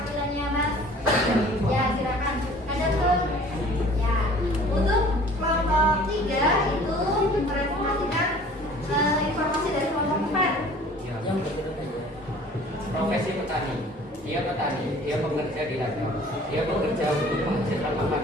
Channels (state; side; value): normal; both; correlation 0.49